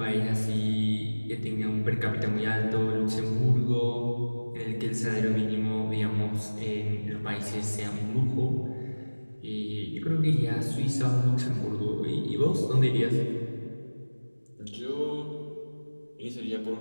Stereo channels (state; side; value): inverted; both; correlation -1.00